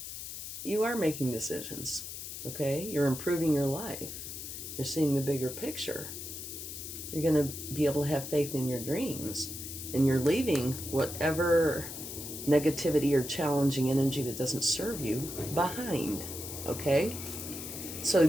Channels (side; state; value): left; noise; hiss, 8 dB below the sound